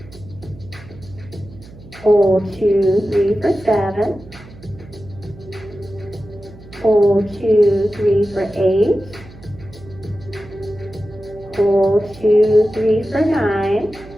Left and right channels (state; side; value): noise; right; hum, 19 dB below the sound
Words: Hold 2, 3 for 7. Hold 2, 3 for 8. Hold 2, 3 for 9.